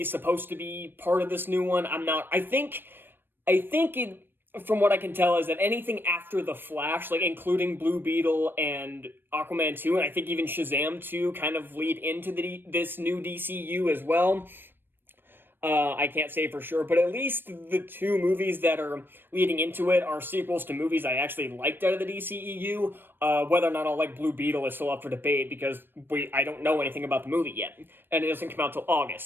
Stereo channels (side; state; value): left; late; 0.097 ms